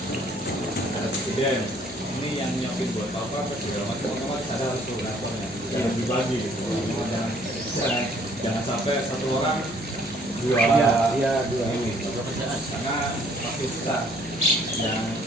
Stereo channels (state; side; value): noise; left; hum, 22 dB below the sound